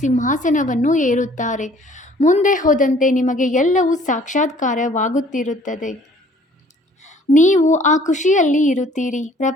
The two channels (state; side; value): normal; both; correlation 0.56